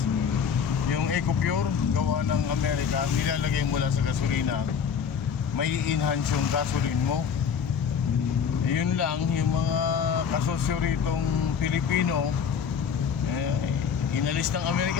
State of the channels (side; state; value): right; quieter; 7.1 dB